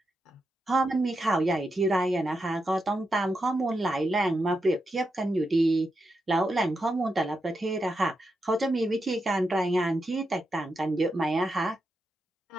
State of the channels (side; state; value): both; normal; correlation 0.86